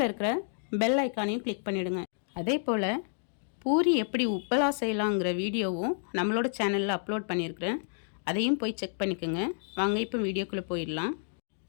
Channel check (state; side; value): silent; right; digital silence